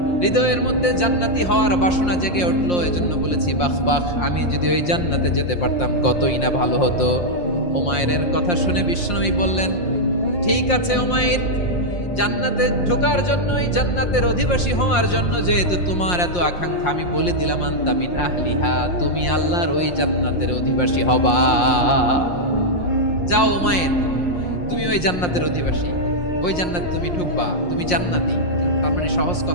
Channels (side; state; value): right; late; 5.6 ms